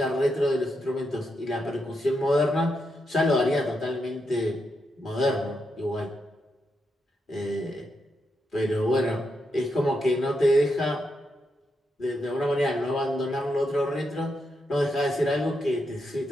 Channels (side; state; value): both; normal; correlation 0.83